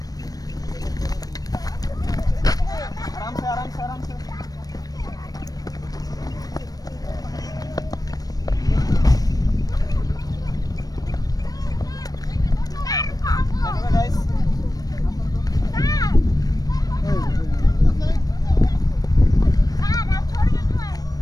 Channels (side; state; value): right; late; 0.18 ms